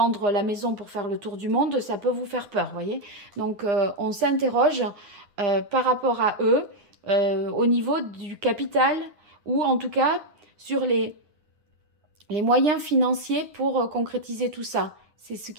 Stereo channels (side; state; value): left; late; 9.6 ms